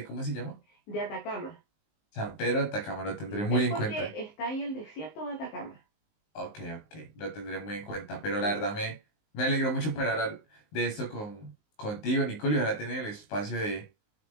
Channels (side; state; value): right; late; 19 ms